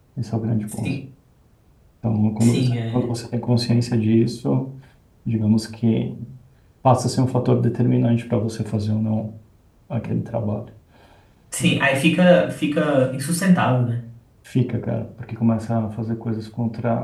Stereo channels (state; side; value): identical; both; correlation 1.00